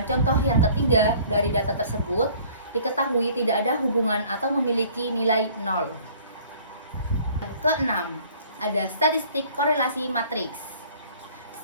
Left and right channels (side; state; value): both; inverted; correlation -0.53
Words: contoh yang ketiga dari data tersebut, diketahui tidak ada hubungan atau memiliki nilai 0. Keenam, ada statistik korelasi matriks.